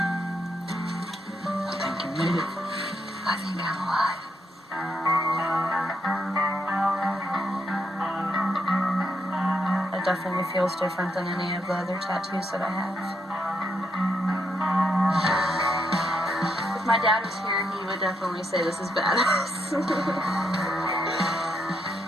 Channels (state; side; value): normal; both; correlation 0.78